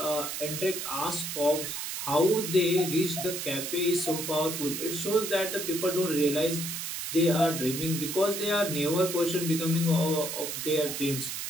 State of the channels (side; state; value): right; noise; hiss, 5 dB below the sound